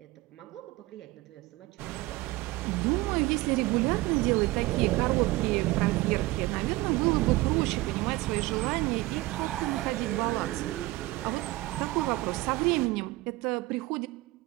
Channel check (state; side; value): quieter; left; 19.6 dB